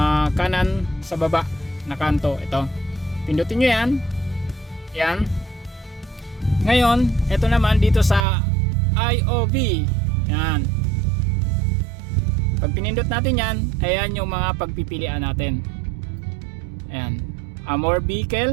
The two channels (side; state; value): left; drops out; at 8.2 s